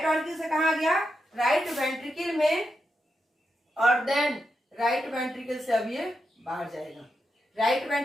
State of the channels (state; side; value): normal; both; correlation 0.85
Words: ऑर्किल से कहाँ आ गया, राइट वेंट्रिकल में, और देन राइट वेंट्रिकल से अब ये बाहर जाएगा। राइट